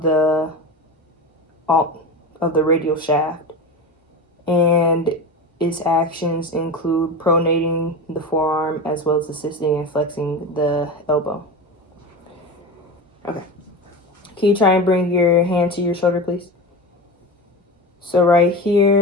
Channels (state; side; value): normal; both; correlation 0.26